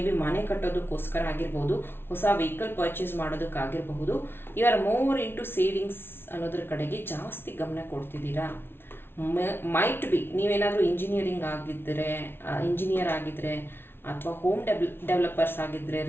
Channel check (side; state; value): right; late; 0.11 ms